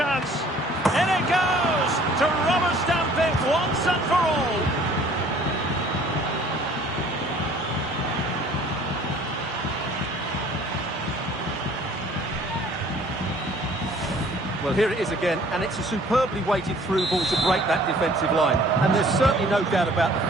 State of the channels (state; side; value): normal; both; correlation 0.54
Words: In it goes to rubber stamp it once and for all. Well, here it is again, and it's a superbly weighted through ball to break that defensive line. And there's certainly no doubt about the